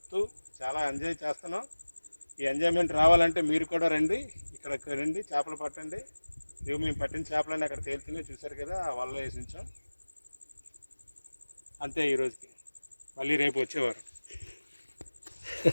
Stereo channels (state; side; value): inverted; both; correlation -1.00